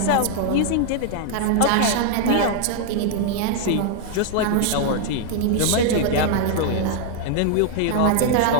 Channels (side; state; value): both; different; correlation 0.00